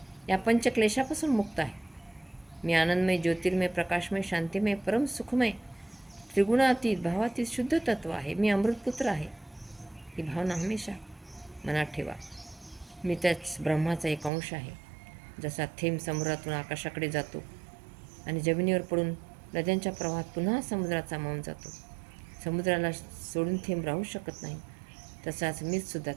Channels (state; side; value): drops out; left; at 14.3 s